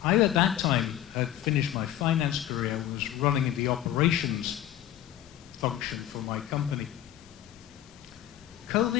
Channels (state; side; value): quieter; right; 12.0 dB